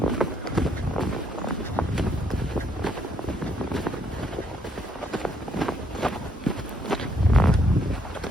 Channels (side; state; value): both; normal; correlation 0.71